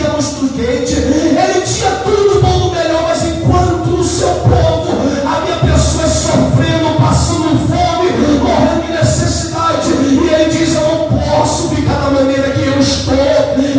muito quente. Ele tinha tudo bom do melhor, mas enquanto o seu povo, havia pessoas sofrendo, passando fome, morrendo de necessidade, e ele diz: eu não posso ficar da maneira que eu estou,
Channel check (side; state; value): both; identical; correlation 1.00